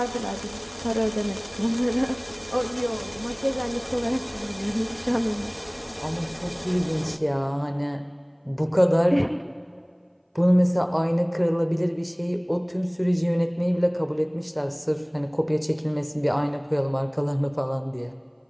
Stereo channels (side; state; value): both; identical; correlation 1.00